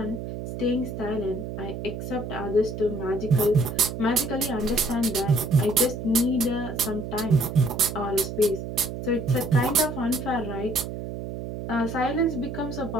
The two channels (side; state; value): right; noise; hum, 7 dB below the sound